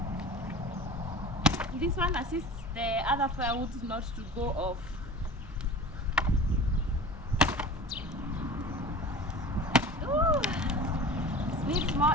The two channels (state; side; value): normal; both; correlation 0.37